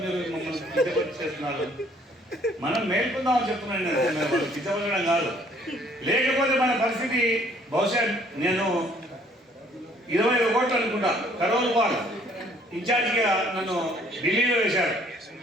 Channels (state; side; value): normal; both; correlation 0.61